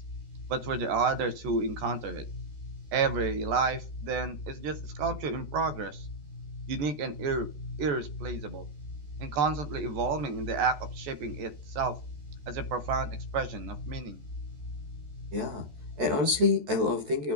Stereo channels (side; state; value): left; late; 14 ms